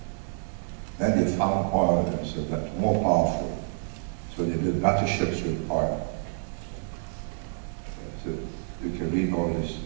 Then they found oil, and so that's more powerful. So they built better ships with oil. So you can read all these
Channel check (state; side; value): silent; left; 59 dB below the other